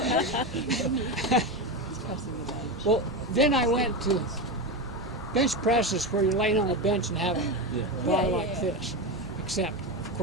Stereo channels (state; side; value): normal; both; correlation 0.16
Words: Well, then I went to bench presses where you're laying on a bench and have a bar like this. Except, of